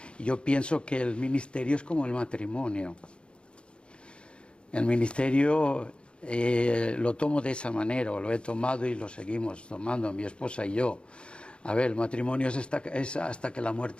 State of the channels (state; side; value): late; right; 0.056 ms